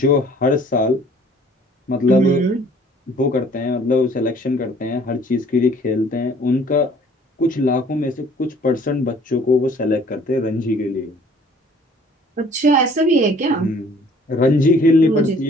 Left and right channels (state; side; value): normal; both; correlation 0.55